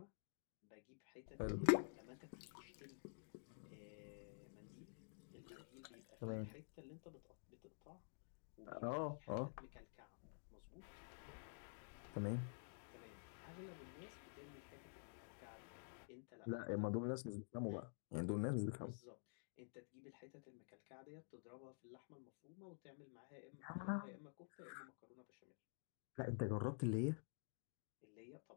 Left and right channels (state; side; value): silent; right; digital silence